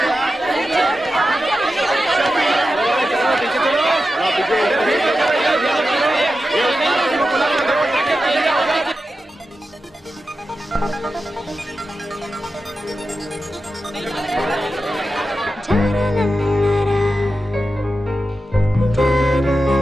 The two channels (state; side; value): normal; both; correlation 0.91